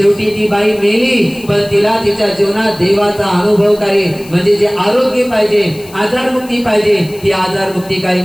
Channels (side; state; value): left; noise; hiss, 22 dB below the sound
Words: ती बाई मेली. पण तिला तिच्या जीवनात देवाचा अनुभवकारी म्हणजे जे आरोग्य पाहिजे, आजारमुक्ती पाहिजे, ती आजारमुक्ती काही